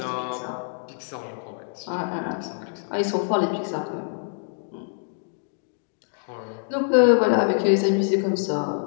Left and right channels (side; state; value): right; silent; digital silence